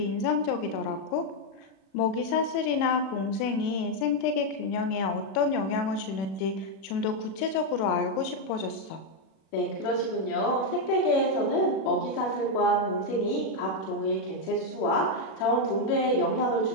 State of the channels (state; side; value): late; right; 37 ms